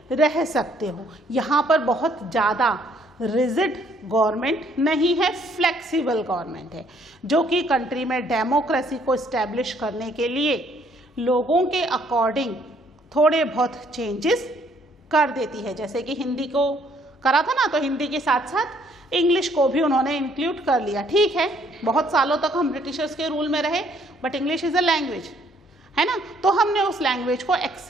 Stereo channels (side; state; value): both; normal; correlation 0.65